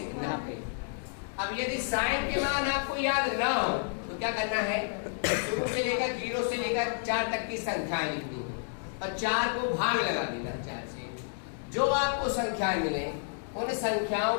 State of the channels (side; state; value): right; silent; digital silence